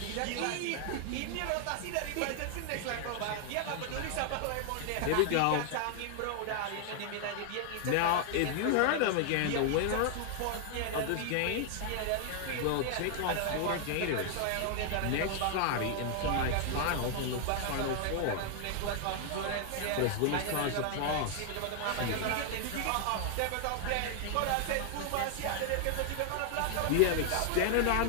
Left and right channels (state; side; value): different; both; correlation 0.00